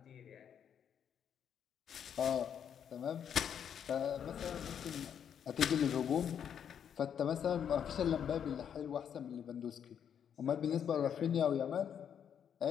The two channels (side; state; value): right; quieter; 8.4 dB